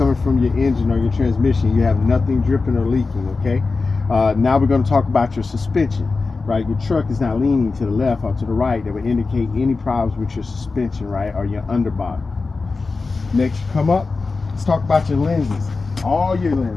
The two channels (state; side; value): quieter; right; 4.0 dB